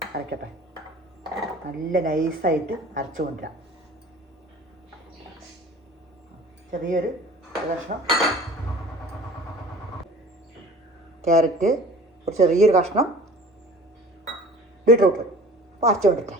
അരക്കട്ടെ, നല്ല നൈസായിട്ട് അരച്ച് കൊണ്ടുവരാം. ചെറിയൊരു കഷ്ണം ക്യാരറ്റ്, ഒരു ചെറിയൊരു കഷ്ണം ബീട്രൂട്ട് അപ്പോൾ അരച്ച്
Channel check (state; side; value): normal; both; correlation 0.45